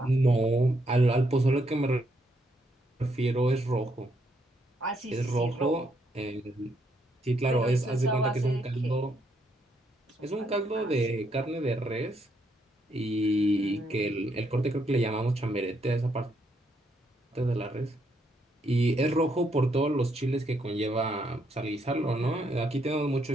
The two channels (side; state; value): both; normal; correlation 0.75